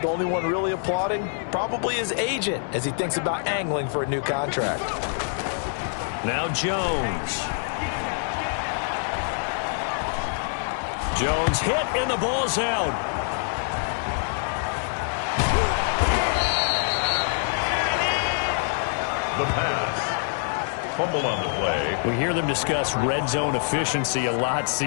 only one really applauding probably his agent as he thinks about angling for a new contract. Now Jones. Jones hit and the ball's out. The pass. Fumble on the play. We hear them discuss red zone efficiency a lot,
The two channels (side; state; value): right; silent; 62 dB below the other